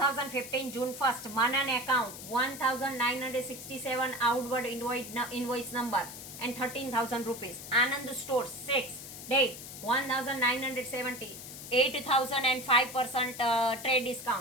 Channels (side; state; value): left; noise; hiss, 12 dB below the sound